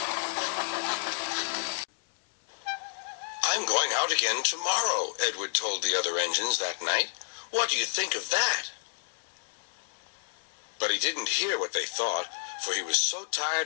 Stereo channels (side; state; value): right; silent; 58 dB below the other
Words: "I'm going out again tomorrow," Edward told the other engines that night. "What do you think of that?" But he didn't hear what they thought, for he was so